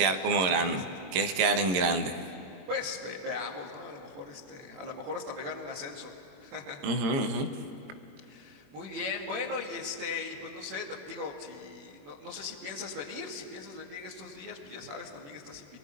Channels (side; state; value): left; late; 22 ms